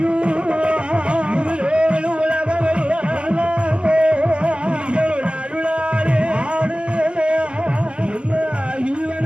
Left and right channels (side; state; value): left; late; 0.050 ms